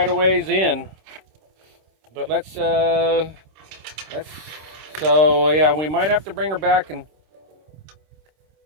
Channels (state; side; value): late; left; 26 ms